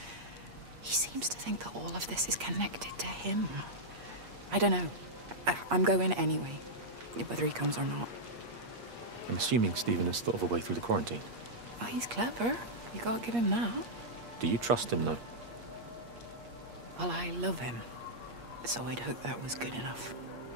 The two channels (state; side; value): late; left; 8.5 ms